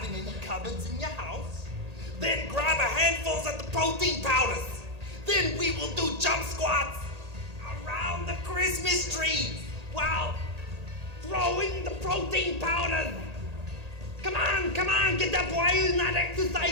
in any cupboards in your house. Then grab a handful of the protein powders. Then we will do jump squats around the Christmas tree while throwing the protein powders. Come on, get up. Why are you not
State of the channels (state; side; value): late; left; 1.8 ms